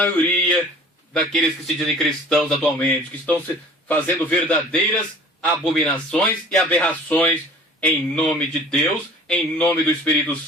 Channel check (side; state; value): both; normal; correlation 0.46